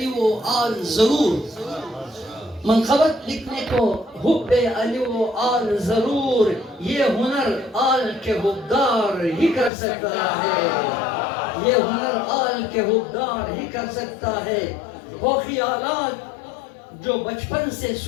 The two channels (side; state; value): right; drops out; at 9.7 s